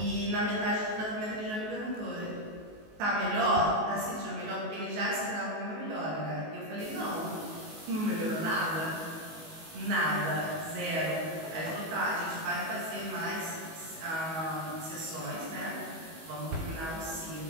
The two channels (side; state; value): left; late; 19 ms